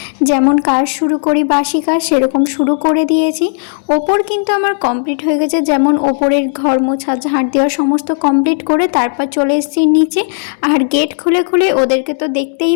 যেমন কাজ শুরু করি, বাসি কাজ সেরকম শুরু করে দিয়েছি। ওপর কিন্তু আমার কমপ্লিট হয়ে গেছে, যেমন ওপরের ঘর মোছা, ঝাড় দেওয়া সমস্ত কমপ্লিট করে তারপর চলে এসেছি নিচে। আর গেট খুলে খুলে ওদেরকে তো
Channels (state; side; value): silent; right; digital silence